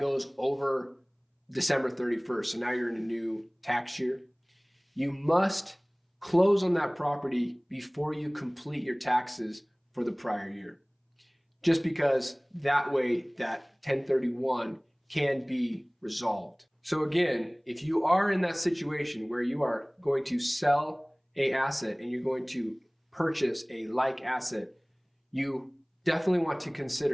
over December 31st. So now you're in a new tax year. You must close on that property before you complete your taxes for the prior year. Just because that way that 1031 can be resolved. So again, if you are in that situation where you are going to sell an asset and you're going to purchase a like asset, you definitely want to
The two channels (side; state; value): both; identical; correlation 1.00